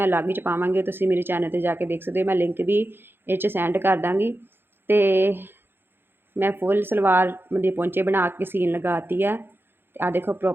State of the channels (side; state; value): left; late; 0.10 ms